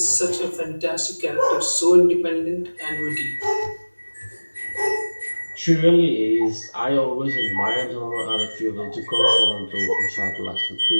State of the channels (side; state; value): both; inverted; correlation -1.00